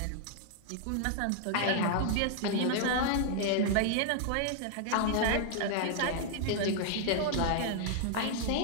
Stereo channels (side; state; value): both; different; correlation -0.01